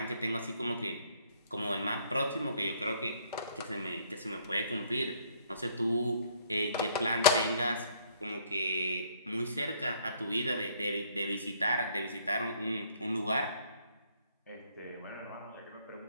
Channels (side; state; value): both; inverted; correlation -0.62